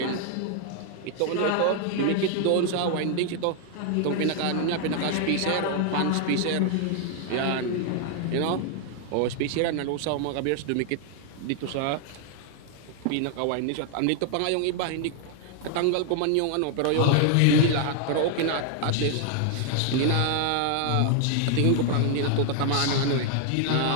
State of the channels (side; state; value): both; different; correlation 0.00